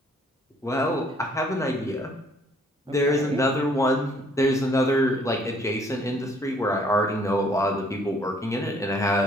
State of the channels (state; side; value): normal; both; correlation 0.62